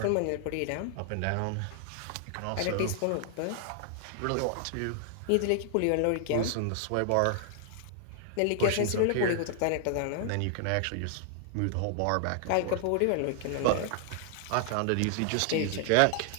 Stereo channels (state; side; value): different; both; correlation 0.00